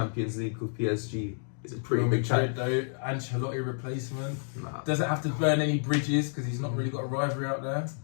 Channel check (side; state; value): right; silent; digital silence